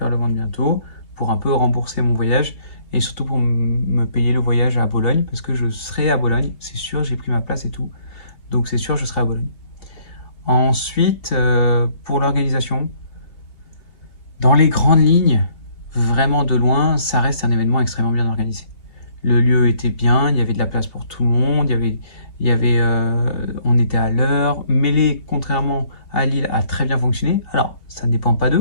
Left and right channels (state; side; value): late; right; 2.9 ms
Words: le vendre bientôt pour un peu rembourser mon voyage et surtout pour me payer le voyage à Bologne parce que je serai à Bologne, c'est sûr, j'ai pris ma place et tout, donc c'est sûr je serai à Bologne. Ensuite, pour l'organisation, dans les grandes lignes, vraiment de loin, ça reste un événement extrêmement bien organisé. Le lieu était bien, il y avait de la place pour tout le monde, on était à l'heure. Mêlée, contrairement à Lille, a très bien fonctionné. Alors, ça ne dépend pas